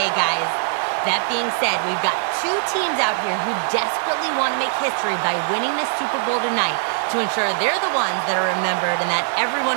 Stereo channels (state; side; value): silent; left; 58 dB below the other